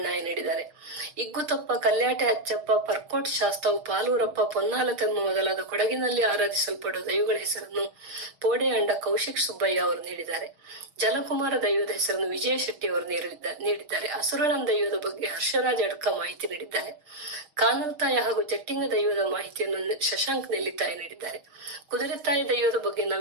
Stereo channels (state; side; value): late; left; 6.6 ms